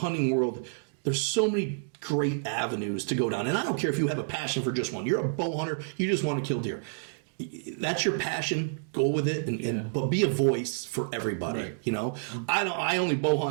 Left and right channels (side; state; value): left; silent; digital silence